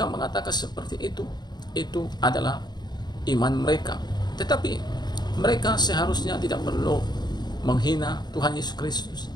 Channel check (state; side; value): late; right; 0.20 ms